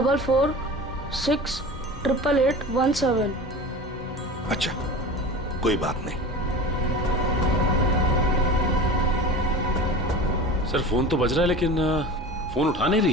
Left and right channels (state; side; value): normal; both; correlation 0.33